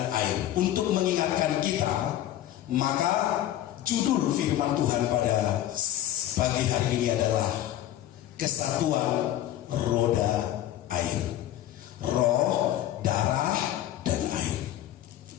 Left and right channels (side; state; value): right; quieter; 12.8 dB